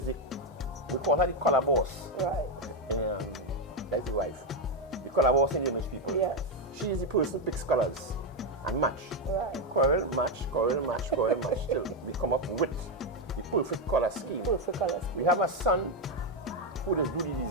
we call her the color boss. Right. That's the wife. The color boss in the Image People. Yes. She is the person who picks colors and match. Right. Coral match, till we come up with the perfect color scheme. Perfect color scheme. We have a son who does do the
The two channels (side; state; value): both; normal; correlation 0.06